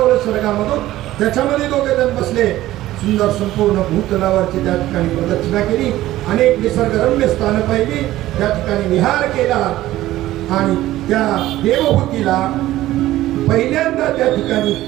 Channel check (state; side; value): quieter; left; 15.3 dB